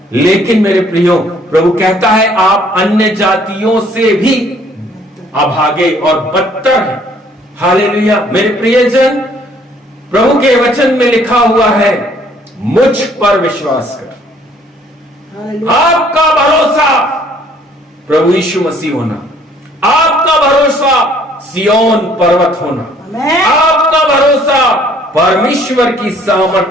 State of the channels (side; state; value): both; normal; correlation 0.60